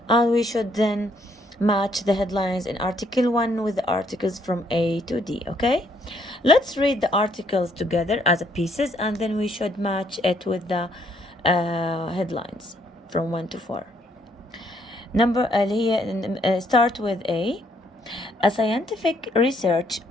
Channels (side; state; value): both; normal; correlation 0.69